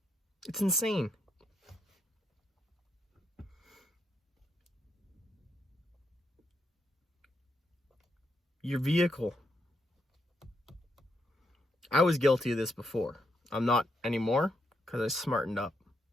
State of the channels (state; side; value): normal; both; correlation 0.79